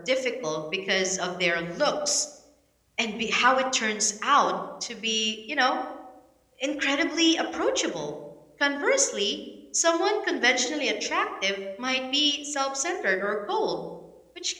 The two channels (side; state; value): both; identical; correlation 1.00